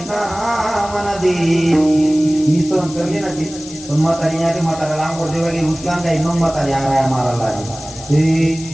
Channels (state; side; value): noise; left; hiss, 15 dB below the sound